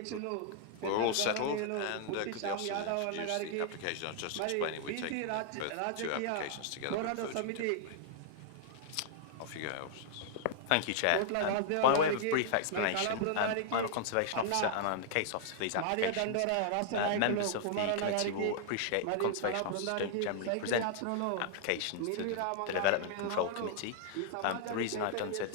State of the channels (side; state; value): both; different; correlation -0.01